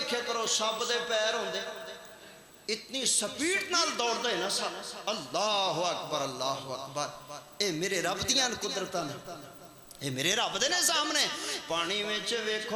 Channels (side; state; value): both; identical; correlation 1.00